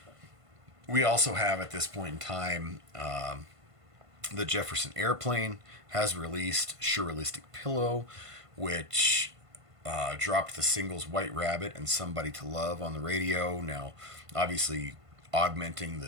We also have, at this point in time, the Jefferson Airplane has released Surrealistic Pillow, which dropped the singles White Rabbit and Somebody to Love on the radio. Now, obviously, augmenting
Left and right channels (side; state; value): left; late; 1.5 ms